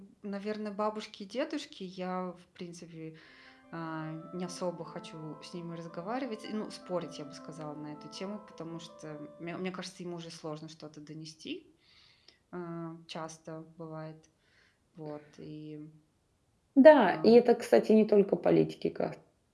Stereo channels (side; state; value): both; identical; correlation 1.00